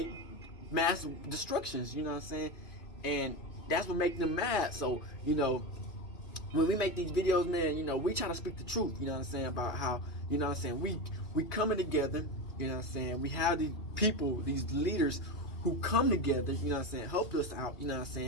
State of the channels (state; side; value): late; right; 2.4 ms